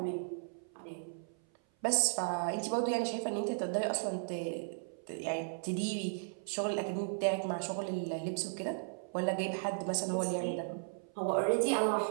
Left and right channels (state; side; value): silent; left; 54 dB below the other